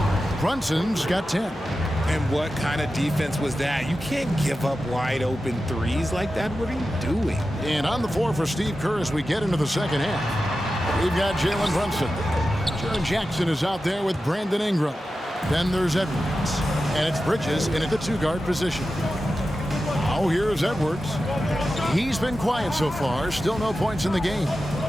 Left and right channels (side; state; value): both; normal; correlation 0.92